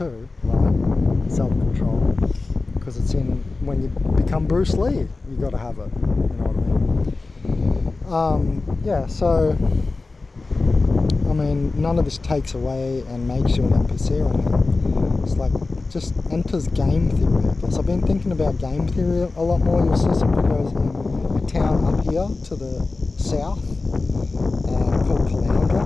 right? Self-control, because it's in when you become Bruce Lee, you got to have it. You know what I mean? Yeah. So, I mean, none of this takes away and makes you an NPC or anything. It's like just enters game theory, I guess. I've been thinking about game theory a lot more. You'll see some videos in a town up here to the south called Caloundra,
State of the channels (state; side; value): quieter; right; 3.6 dB